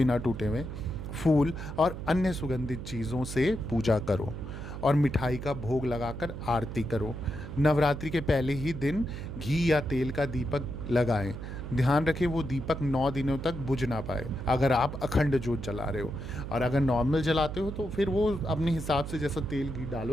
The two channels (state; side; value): noise; right; hum, 8 dB below the sound